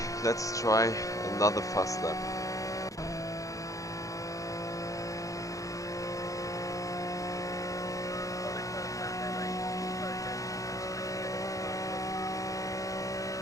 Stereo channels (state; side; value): late; right; 0.16 ms